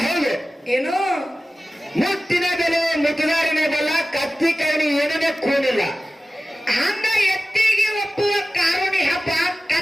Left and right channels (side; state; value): both; normal; correlation 0.96